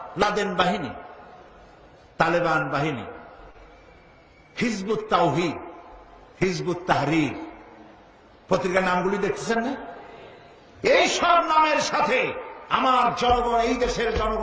লাদেন বাহিনী, তালেবান বাহিনী, হিজবুত তাওহীদ, হিজবুত তাহরীর, পত্রিকার নামগুলি দেখতেছেন না? এই সব নামের সাথে আমার জনগণ, এই দেশের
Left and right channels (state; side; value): identical; both; correlation 1.00